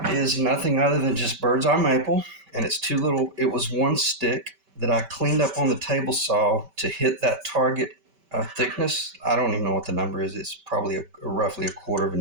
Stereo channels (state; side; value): late; left; 5.2 ms